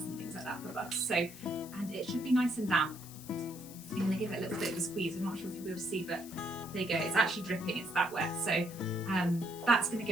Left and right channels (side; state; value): left; noise; hiss, 16 dB below the sound